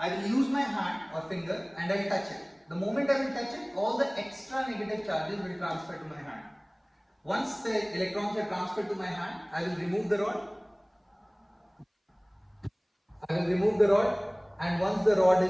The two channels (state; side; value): identical; both; correlation 1.00